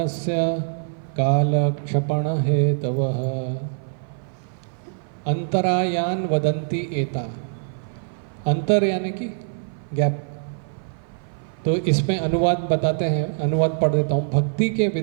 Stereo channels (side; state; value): left; silent; 56 dB below the other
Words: कालक्षपण हेतवः। अंतरायान वदन्ति एता, अंतर यानी कि गैप। तो इसमें अनुवाद बताते हैं, अनुवाद पढ़ देता हूँ। भक्ति के